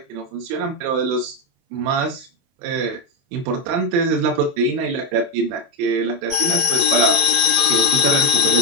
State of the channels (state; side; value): late; left; 22 ms